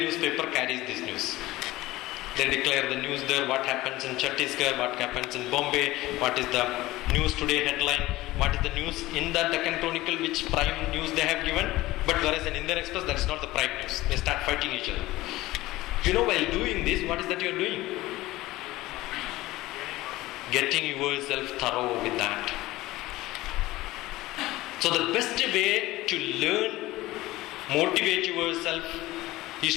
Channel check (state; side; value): quieter; right; 18.0 dB